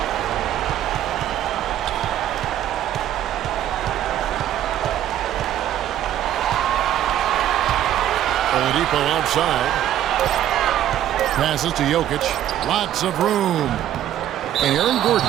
Oladipo outside. Passes to Jokic. Lots of room. And Aaron Gordon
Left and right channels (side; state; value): left; quieter; 11.7 dB